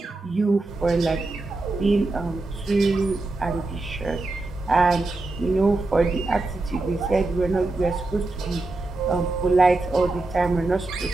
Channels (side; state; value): left; quieter; 3.1 dB